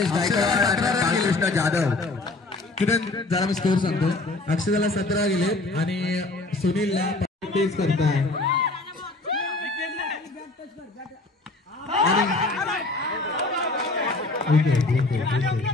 गायकवाड आणि बालकृष्ण जाधव. किरण जरा मी स्कोर सांगतो. अक्षदाला 17 गेले आणि सुनीलला 35 करताय.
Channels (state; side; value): quieter; right; 3.1 dB